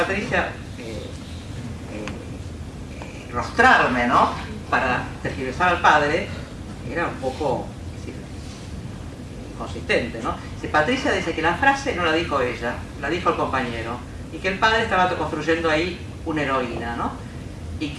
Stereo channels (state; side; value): identical; both; correlation 1.00